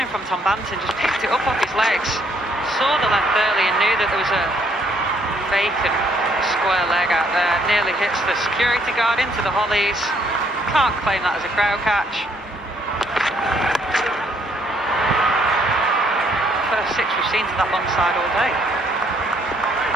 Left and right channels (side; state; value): both; normal; correlation 0.68